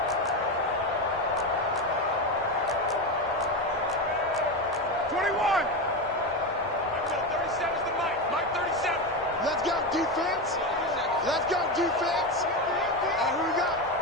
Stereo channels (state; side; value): normal; both; correlation 0.16